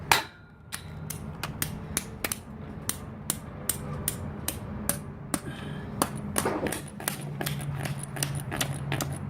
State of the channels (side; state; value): both; identical; correlation 1.00